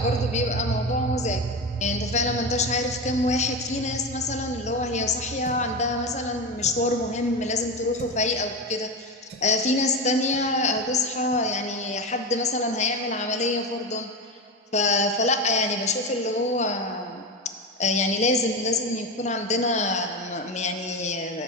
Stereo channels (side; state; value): both; normal; correlation 0.19